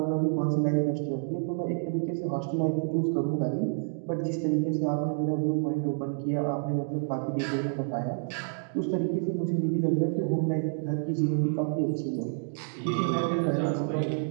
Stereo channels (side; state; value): left; silent; digital silence